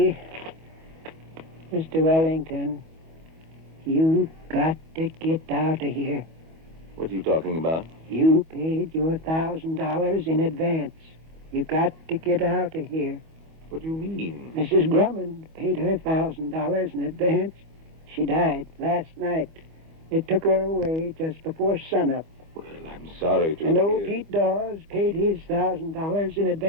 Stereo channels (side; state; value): left; late; 25 ms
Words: Mr. Wellington, you got to get out of here. What are you talking about? You paid your $1,000 in advance. You got to get out of here. What do you mean? Mrs. Drummond paid her $1,000 in advance. She died last night. They took her away just before sunup. Well, I'm sorry to And old hear. Pete Dawes paid his $1,000 in